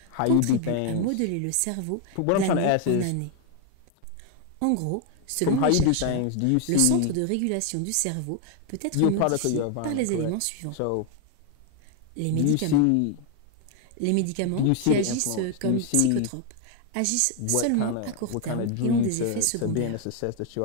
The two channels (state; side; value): different; both; correlation 0.01